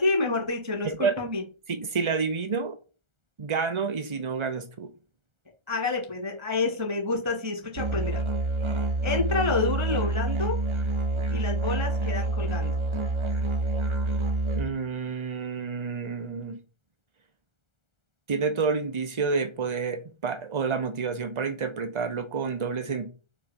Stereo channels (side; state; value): left; late; 1.4 ms